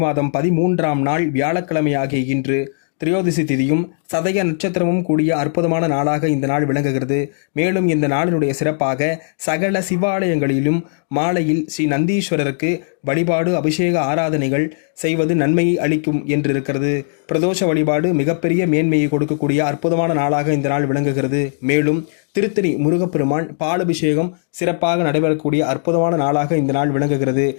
மாதம் 13ஆம் நாள் வியாழக்கிழமை ஆகிய இன்று திரையோதசி திதியும் சதய நட்சத்திரமும் கூடிய அற்புதமான நாளாக இந்த நாள் விளங்குகிறது. மேலும் இந்த நாளினுடைய சிறப்பாக சகல சிவாலயங்களிலும் மாலையில் ஸ்ரீ நந்தீஸ்வரருக்கு வழிபாடு, அபிஷேக ஆராதனைகள் செய்வது நன்மையை அளிக்கும் என்றிருக்கிறது. பிரதோஷ வழிபாடு மிகப்பெரிய மேன்மையை கொடுக்கக்கூடிய அற்புதமான நாளாக இந்த நாள் விளங்குகிறது. மேலும் திருத்தணி முருகப்பெருமான் பாலபிஷேகம் சிறப்பாக நடைபெறக்கூடிய அற்புதமான நாளாக இந்த நாள் விளங்குகிறது.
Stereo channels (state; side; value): silent; right; digital silence